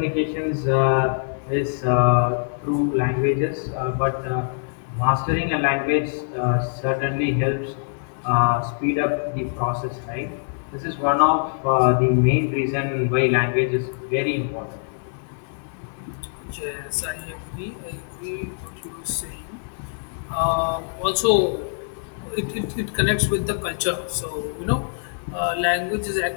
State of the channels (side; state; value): right; silent; 63 dB below the other